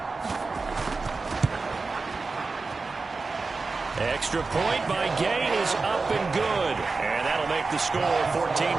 Extra point by Gain is up and good. And that'll make the score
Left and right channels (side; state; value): left; quieter; 4.0 dB